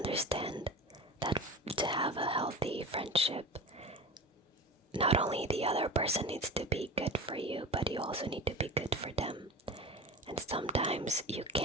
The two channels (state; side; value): normal; both; correlation 0.31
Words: that to have a healthy friendship, not only the other person needs to be good for you, but you also need to be good for them. And sometimes you